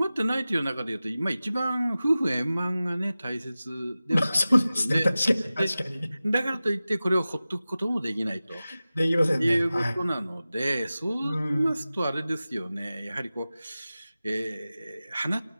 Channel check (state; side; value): inverted; both; correlation -0.96